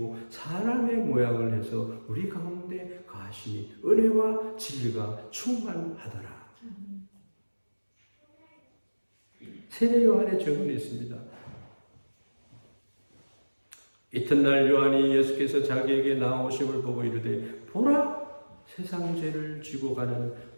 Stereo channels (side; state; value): both; inverted; correlation -1.00